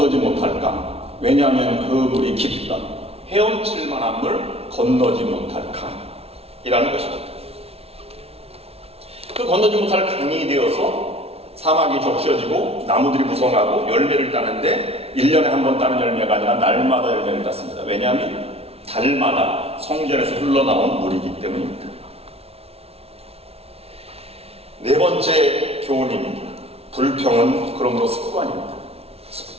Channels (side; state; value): left; late; 0.30 ms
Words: 못할 강. 왜냐하면 그 물이 깊다. 헤엄칠 만한 물, 건너지 못할 강이라는 것입니다. 그 건너지 못할 강이 되어서 사막이 적셔지고 나무들이 무성하고 열매를 따는데 1년에 한 번 따는 열매가 아니라 날마다 열매를 땄습니다. 왜냐하면 달마다 성전에서 흘러나온 물이기 때문입니다. 네 번째 교훈입니다. 불평은 그러므로 습관입니다.